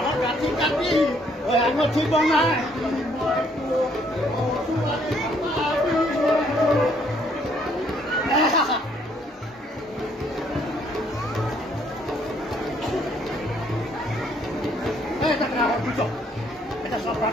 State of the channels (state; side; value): normal; both; correlation 0.66